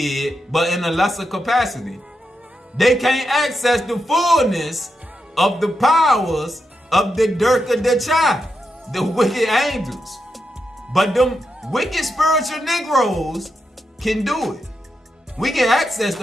but in a lesser capacity. They can't access the fullness of the powers of the Dirk of the Chai, the wicked angels. But them wicked spiritual Negroes can do it. We can access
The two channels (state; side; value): normal; both; correlation 0.85